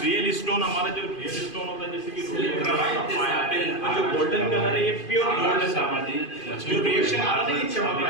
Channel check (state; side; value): late; right; 2.5 ms